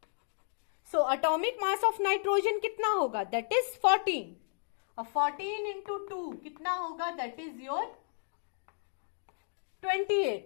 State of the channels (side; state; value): right; silent; digital silence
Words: So atomic mass of nitrogen कितना होगा? That is 14। और 14 इंटू 2 कितना होगा? That is your